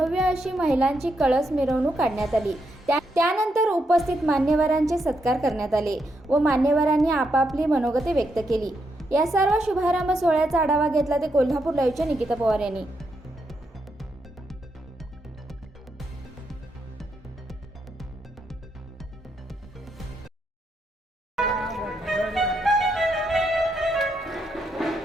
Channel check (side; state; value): both; normal; correlation 0.80